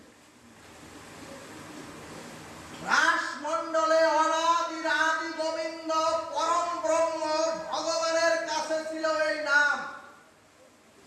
অনাদির আদি গোবিন্দ পরম ব্রহ্ম ভগবানের কাছে ছিল এই নাম।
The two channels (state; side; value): identical; both; correlation 1.00